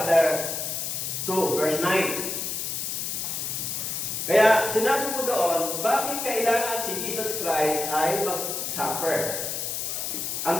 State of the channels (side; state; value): left; noise; hiss, 3 dB below the sound